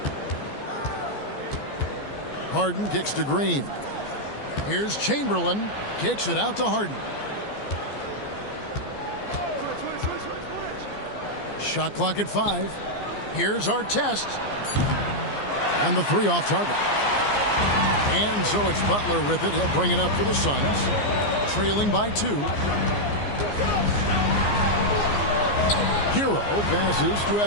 Harden kicks to Green. Here's Chamberlain. Kicks it out to Harden. Shot clock at 5. Here's our test. And the 3 off target. And so it's Butler with it. He'll bring it up for the Suns. Trailing by 2. Hero passes to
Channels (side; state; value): right; late; 14 ms